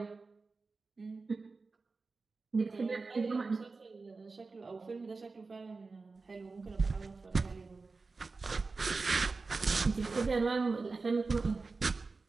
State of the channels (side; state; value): left; quieter; 4.0 dB